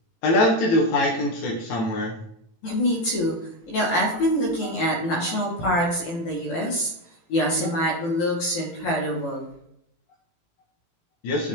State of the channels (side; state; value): right; late; 18 ms